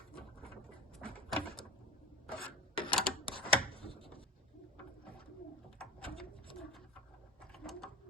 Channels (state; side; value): normal; both; correlation 0.26